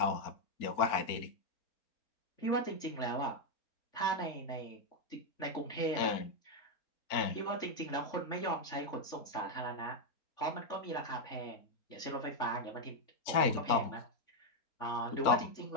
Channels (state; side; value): late; right; 4.4 ms